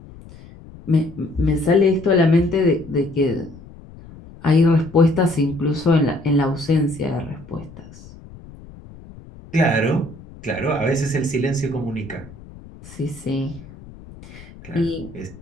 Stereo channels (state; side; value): noise; left; rumble, 19 dB below the sound